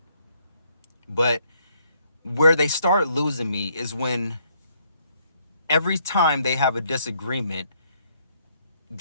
But where they start losing me is when every time they have a disagreement,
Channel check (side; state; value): both; inverted; correlation -0.69